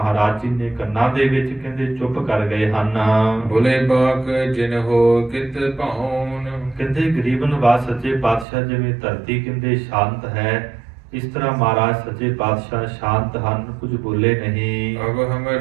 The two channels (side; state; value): left; drops out; at 8.5 s